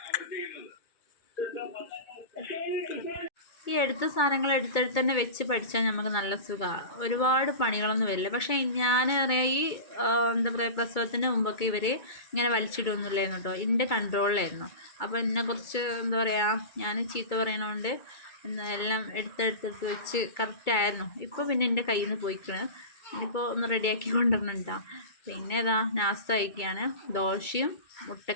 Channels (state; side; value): late; right; 2.3 ms